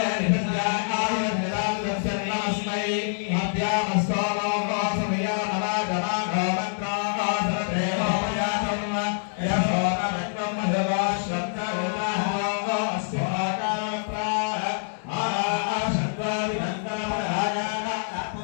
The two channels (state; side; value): silent; right; 61 dB below the other